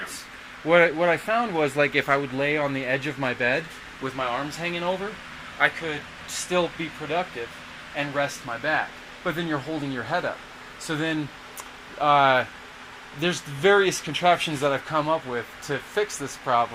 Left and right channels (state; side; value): identical; both; correlation 1.00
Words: what I found was, like, if I would lay on the edge of my bed with my arms hanging over, I could still be productive and rest my back. But then you're holding your head up. So then there's various contraptions that I've come up with to fix this